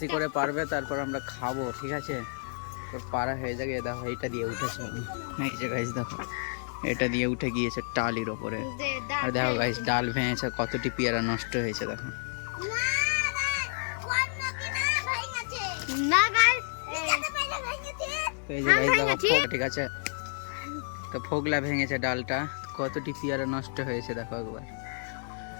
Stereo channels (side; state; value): right; silent; digital silence